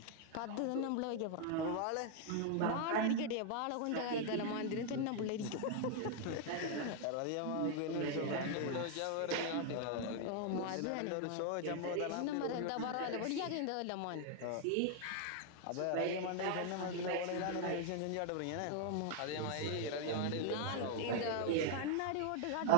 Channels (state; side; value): different; both; correlation 0.00